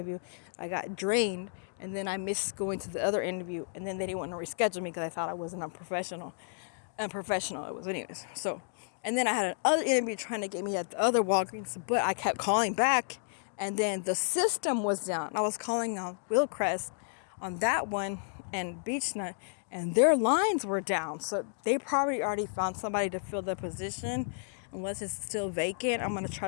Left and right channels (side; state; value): right; silent; digital silence